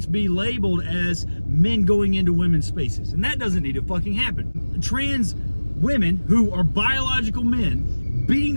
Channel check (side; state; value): both; inverted; correlation -1.00